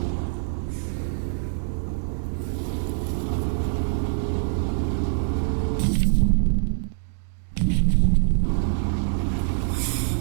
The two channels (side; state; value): left; silent; digital silence